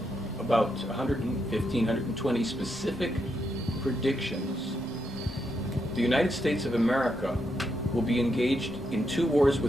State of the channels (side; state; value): both; normal; correlation 0.81